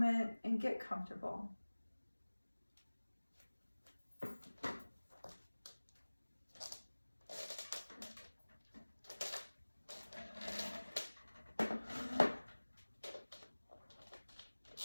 and get comfortable.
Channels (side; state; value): both; inverted; correlation -1.00